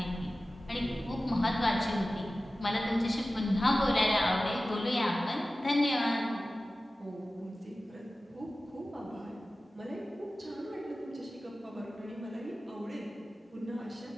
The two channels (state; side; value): normal; both; correlation 0.96